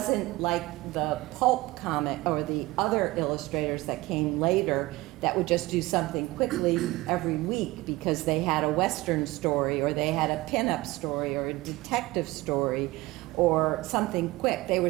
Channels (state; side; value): quieter; left; 19.9 dB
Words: like the pulp comic or the other illustrators that came later that would just do something quickly every week because they had a Western story or they had a pinup story or a detective story or something quick. They